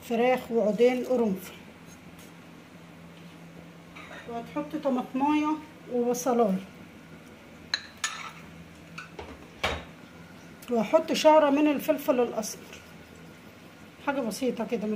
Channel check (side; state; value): both; identical; correlation 1.00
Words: فراخ وعودين قرنفل، وهتحط طماطمايه وبصلايه، وهحط شعره من الفلفل الاسمر، حاجه بسيطه كده من